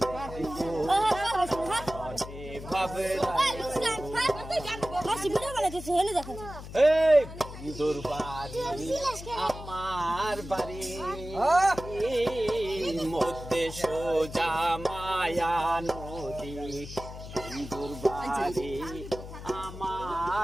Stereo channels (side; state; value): left; noise; hum, 12 dB below the sound